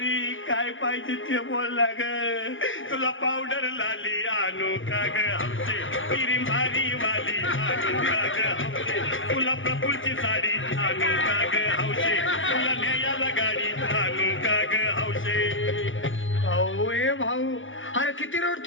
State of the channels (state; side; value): late; right; 0.57 ms